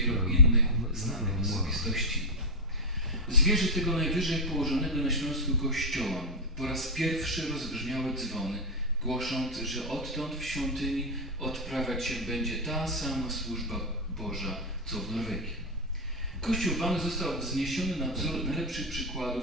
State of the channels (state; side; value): normal; both; correlation 0.02